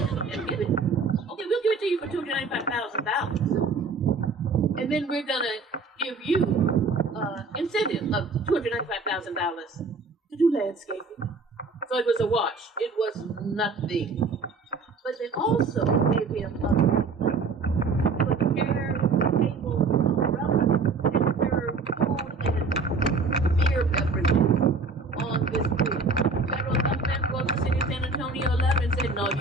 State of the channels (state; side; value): quieter; left; 4.1 dB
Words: and give it, okay, we'll give it to you for $295,000, and then we're gonna give you incentive of $295,000 to do landscaping. So it was a wash. It was nothing. But they also gave him a chair, table, umbrella, and serve food and beer beverages on this bridge. Federal government wrote the city of San Antonio a letter and said, no,